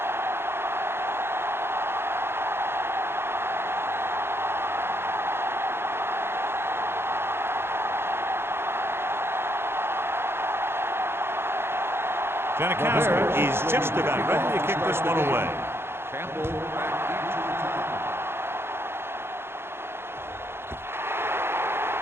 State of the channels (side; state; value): left; late; 0.11 ms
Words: Janikowski is just about ready to kick this one away.